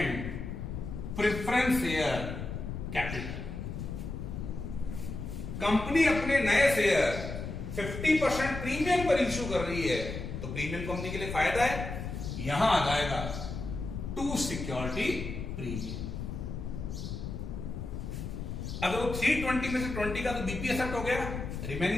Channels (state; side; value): noise; left; rumble, 6 dB below the sound